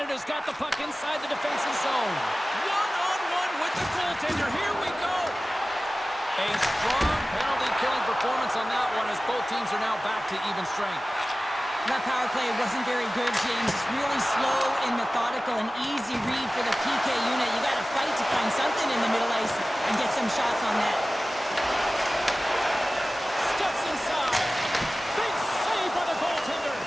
got the puck inside the defensive zone. One-on-one with the goaltender. Here we go. A strong penalty-killing performance on that one as both teams are now back to even strength. That power play wasn't very good, James. It's really slow and methodical, an easy read for the PK unit. You got to fight to find something in the middle ice and get some shots on that. Steps inside. Big save by the goaltender.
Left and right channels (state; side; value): normal; both; correlation 0.97